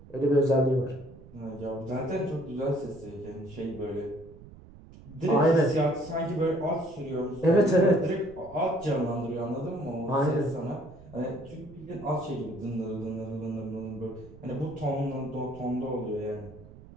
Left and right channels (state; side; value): noise; right; rumble, 19 dB below the sound